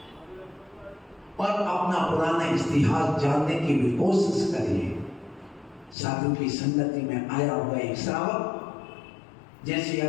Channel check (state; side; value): drops out; right; at 6.0 s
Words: और अपना पुराना इतिहास जानने की भी कोशिश करिए। साधु की संगति में आया हुआ एक श्रावक, जैसे